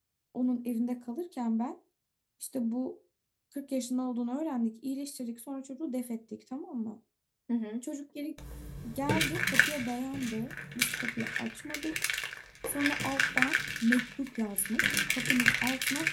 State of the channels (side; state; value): both; identical; correlation 1.00